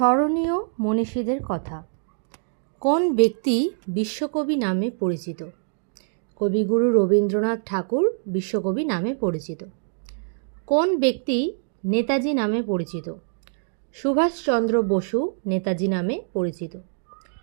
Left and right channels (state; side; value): silent; left; 62 dB below the other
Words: মনীষীদের কথা। কোন ব্যক্তি বিশ্বকবি নামে পরিচিত? কবিগুরু রবীন্দ্রনাথ ঠাকুর বিশ্বকবি নামে পরিচিত। কোন ব্যক্তি নেতাজি নামে পরিচিত? সুভাষচন্দ্র বসু নেতাজি নামে পরিচিত।